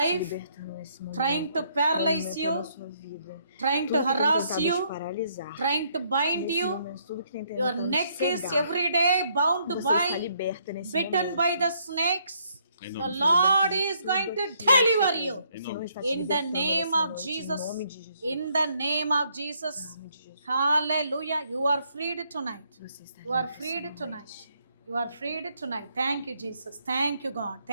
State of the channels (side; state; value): both; inverted; correlation -0.70